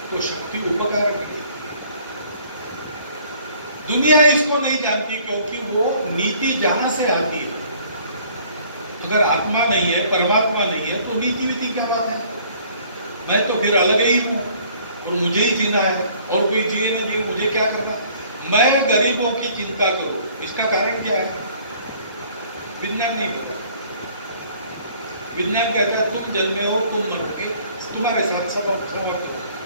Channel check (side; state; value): both; inverted; correlation -0.57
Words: तो शक्ति उपकार की। दुनिया इसको नहीं जानती क्योंकि वो नीति जहां से आती है। अगर आत्मा नहीं है, परमात्मा नहीं है, तो नीति विधि क्या बात है? मैं तो फिर अलग ही हूं और मुझे ही जीना है, और कोई जिए ना जिए मुझे क्या करना। मैं गरीबों की चिंता करूं, इसका कारण क्या है? विज्ञान नहीं कहता। विज्ञान कहता है तुम जन्मे हो, तुम मरोगे, तुम्हारे साथ सब समाप्त हो।